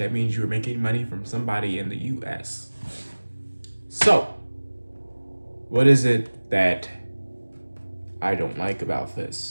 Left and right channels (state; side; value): inverted; both; correlation -1.00